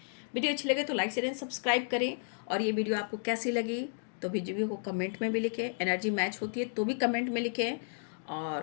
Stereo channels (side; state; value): right; silent; digital silence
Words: वीडियो अच्छी लगे तो लाइक शेयर एंड सब्सक्राइब करें, और ये वीडियो आपको कैसी लगी तो वीडियो को कमेंट में भी लिखें, एनर्जी मैच होती है तो भी कमेंट में लिखें,